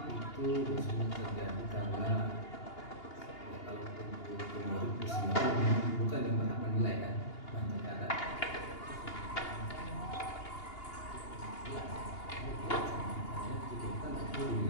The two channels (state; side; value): late; right; 2.8 ms